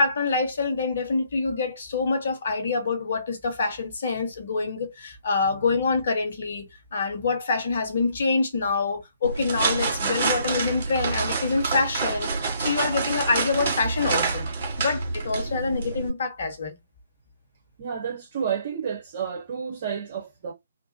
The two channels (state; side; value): inverted; both; correlation -0.68